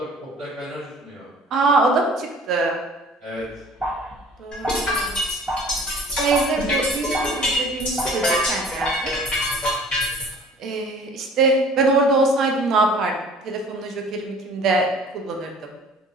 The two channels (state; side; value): normal; both; correlation 0.49